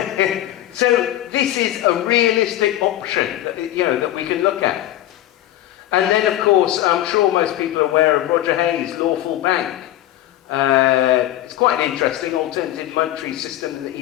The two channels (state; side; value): quieter; right; 13.8 dB